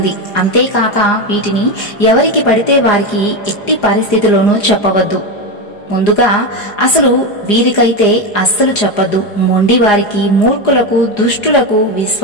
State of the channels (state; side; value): late; right; 4.9 ms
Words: అంతేకాక వీటిని ఎవరికి పడితే వారికి ఎట్టి పరిస్థితిలోనూ చెప్పవద్దు. ముందుగా అసలు వీరికైతే అస్సలు చెప్పద్దు. మొండి వారికి, మూర్ఖులకు, దుష్టులకు,